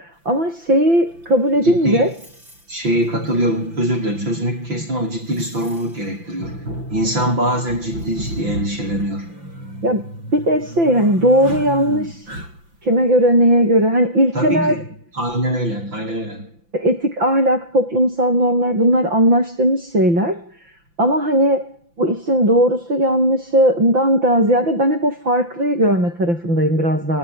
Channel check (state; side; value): late; left; 5.9 ms